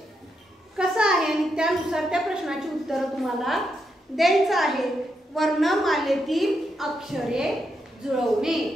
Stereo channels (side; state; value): both; normal; correlation 0.82